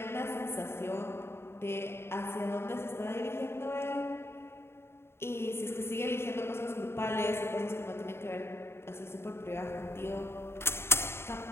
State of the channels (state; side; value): late; right; 0.12 ms